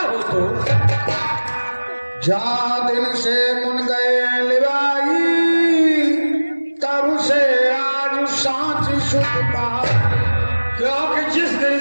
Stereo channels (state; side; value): inverted; both; correlation -1.00